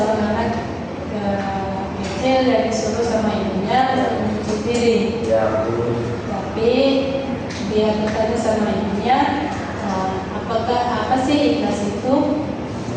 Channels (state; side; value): identical; both; correlation 1.00